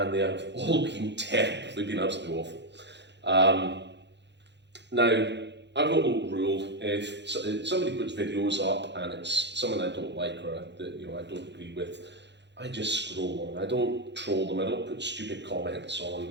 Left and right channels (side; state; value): left; late; 0.51 ms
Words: they have all been terrible, they've been absolutely awful. Now, I've got a little rule: if somebody puts videos up and it's someone I don't like or that I don't agree with, I just scroll on. I don't troll them, I don't put stupid comments